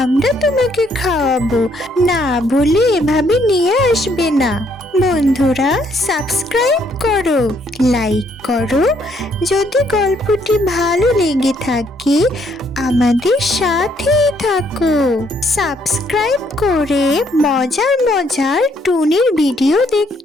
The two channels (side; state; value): both; normal; correlation 0.69